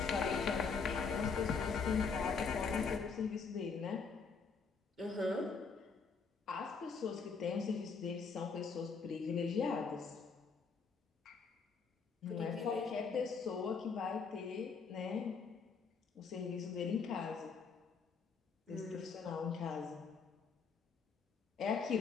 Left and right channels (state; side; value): quieter; right; 5.2 dB